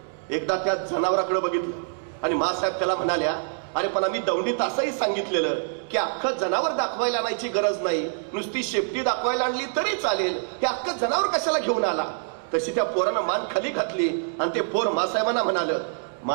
एकदा त्या जनावराकडे बघितलं आणि मासाहेब त्याला म्हणाल्या, अरे पण आम्ही दौंडीत असंही सांगितलेलं की अख्खं जनावर दाखवायला आणायची गरज नाही, नुसती शेपटी दाखवायला आणली तरी चालेल. हे अख्खं जनावर कशाला घेऊन आला? तशी त्या पोरानं मान खाली घातली आणि ते पोर मासाहेबांना म्हणालं,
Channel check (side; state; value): left; silent; digital silence